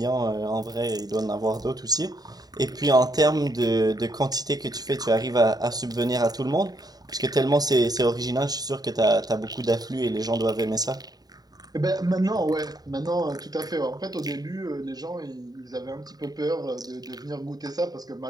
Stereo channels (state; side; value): late; left; 0.19 ms